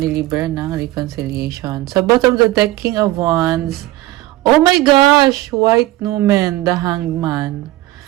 ni Libra ng reconciliation. Sa bottom of the deck, King of Wands. Oh my gosh! White Numen, the Hanged Man.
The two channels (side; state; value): left; quieter; 17.1 dB